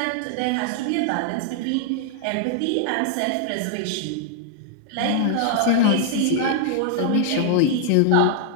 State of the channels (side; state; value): both; different; correlation 0.00